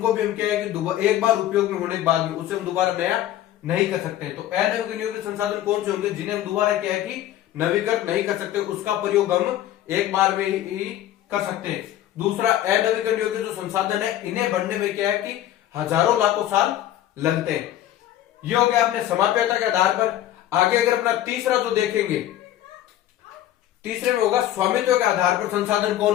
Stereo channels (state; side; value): quieter; right; 12.7 dB